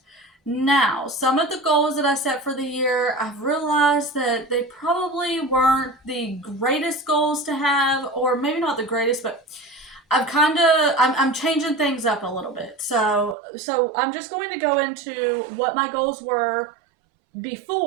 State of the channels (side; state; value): left; drops out; at 13.4 s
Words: Now, some of the goals that I set for the year, I've realized that they probably weren't the greatest goals to have, or maybe not the greatest, but I'm changing things up a little bit. So I'm just going to go into what my goals were